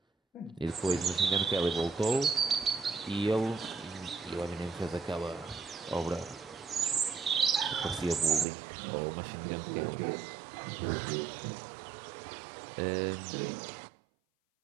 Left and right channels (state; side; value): drops out; left; at 8.5 s